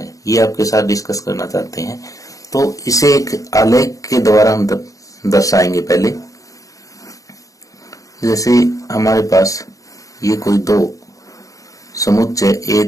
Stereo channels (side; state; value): right; late; 0.16 ms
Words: ये आपके साथ डिस्कस करना चाहते हैं। तो इसे एक आलेख के द्वारा हम दर्शाएंगे। पहले जैसे हमारे पास ये कोई दो समुच्चय ए